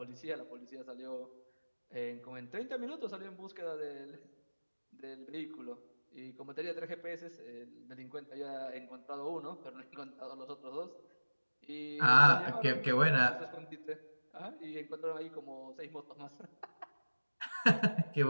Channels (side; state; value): both; inverted; correlation -1.00